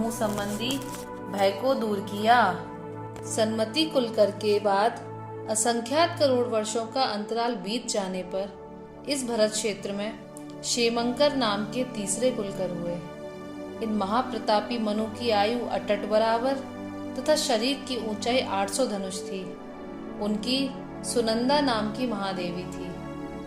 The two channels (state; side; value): identical; both; correlation 1.00